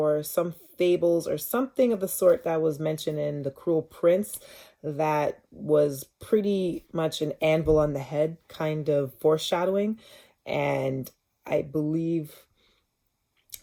some fables or something of the sort that was mentioned in The Cruel Prince that was pretty much an anvil on the head kind of foreshadowing. And I believe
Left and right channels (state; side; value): identical; both; correlation 1.00